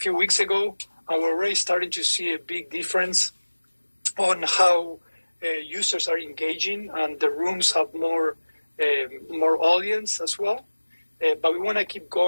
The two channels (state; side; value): inverted; both; correlation -1.00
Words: weeks ago, and we're already starting to see a big difference on how users are engaging, and the rooms have more audience as well. But we want to keep